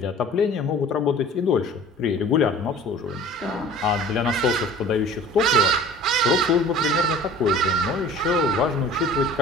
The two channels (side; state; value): both; normal; correlation 0.45